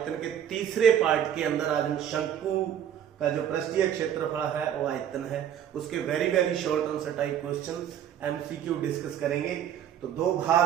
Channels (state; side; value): quieter; left; 9.9 dB